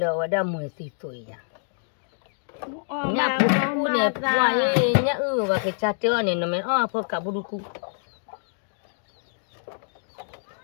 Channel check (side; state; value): right; silent; digital silence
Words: ở đây 10 tuổi à nhà phụ này qua nhà và cái cha chơi này nó mới phụ cả bù cu